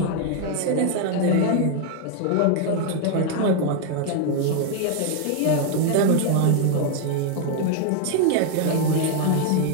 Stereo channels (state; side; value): different; both; correlation 0.00